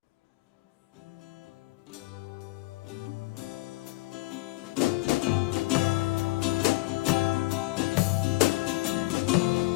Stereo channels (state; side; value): quieter; right; 21.7 dB